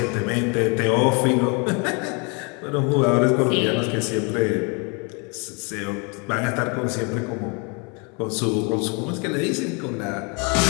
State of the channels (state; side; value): quieter; right; 32.9 dB